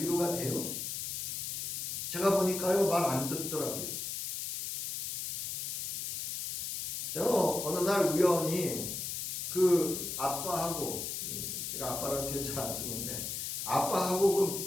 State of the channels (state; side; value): noise; left; hiss, 3 dB below the sound